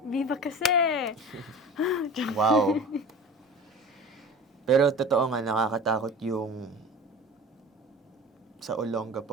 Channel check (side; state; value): both; normal; correlation 0.38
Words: Viva kasi! Wow! Pero totoo nga, nakakatakot yung sa